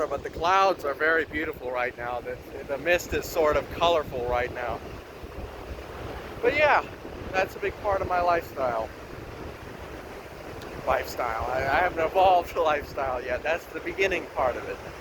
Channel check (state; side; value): identical; both; correlation 1.00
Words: but the clouds are very beautiful right now. The mist is sort of colorful right now. But yeah, that's a big part of my lifestyle. I haven't evolved the lifestyle yet. That's the beginning part of it.